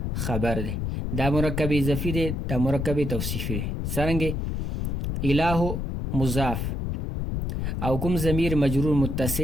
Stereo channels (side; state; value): left; noise; rumble, 2 dB below the sound